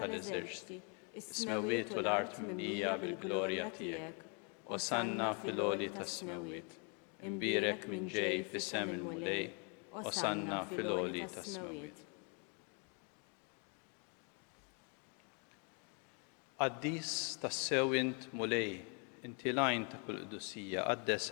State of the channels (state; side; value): quieter; right; 37.3 dB